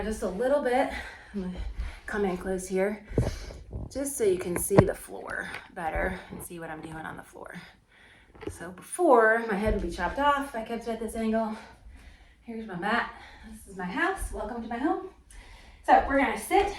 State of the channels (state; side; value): identical; both; correlation 1.00